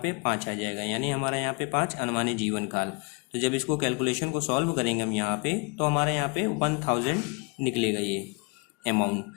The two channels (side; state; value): right; quieter; 33.2 dB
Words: 5 आ जाएगा, यानी हमारा यहाँ पे 5 अनुमानित जीवन काल। तो जब इसको कैलकुलेशन को सॉल्व करेंगे हम यहाँ पे तो हमारे यहाँ पे 1,000 निकलेगा ये अमाउंट।